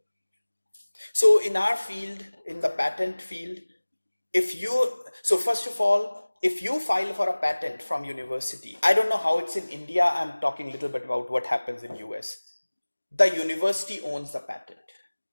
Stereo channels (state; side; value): inverted; both; correlation -1.00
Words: So in our field, in the patent field, first of all, if you file for a patent from university, I don't know how it's in India, I'm talking a little bit about what happens in US. The university owns the patent.